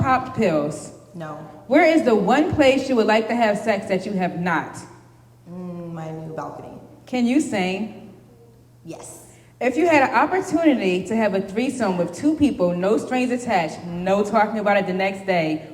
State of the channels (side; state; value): both; identical; correlation 1.00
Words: pills? No. Where is the one place you would like to have sex that you have not? My new balcony. Can you sing? Yes. If you had an opportunity to have a threesome with two people, no strings attached, no talking about it the next day,